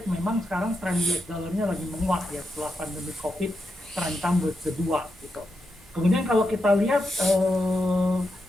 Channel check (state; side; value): normal; both; correlation 0.86